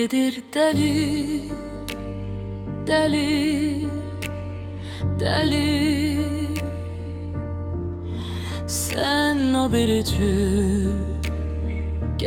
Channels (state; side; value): identical; both; correlation 1.00